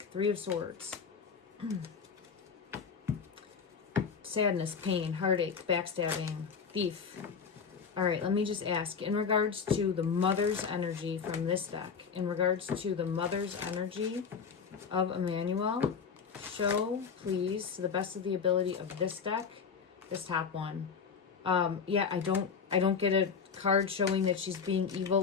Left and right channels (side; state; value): right; quieter; 6.1 dB